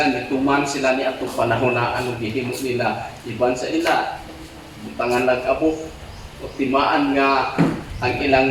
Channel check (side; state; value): both; identical; correlation 1.00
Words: ni atong panahon na ano gihimo nila, iban sa ila, butangan nag-abo, o timaan nga ang